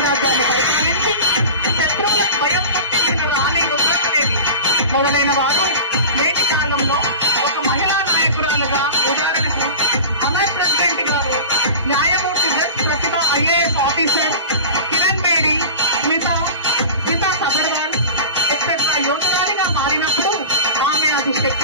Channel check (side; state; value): both; inverted; correlation -0.32